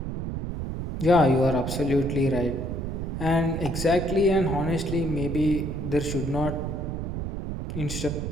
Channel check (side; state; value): right; noise; rumble, 4 dB below the sound